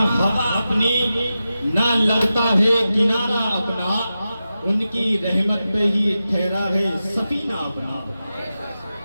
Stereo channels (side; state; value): both; inverted; correlation -0.92